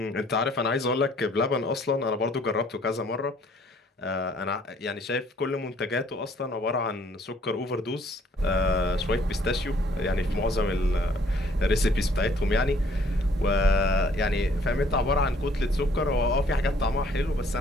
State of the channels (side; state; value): both; normal; correlation 0.61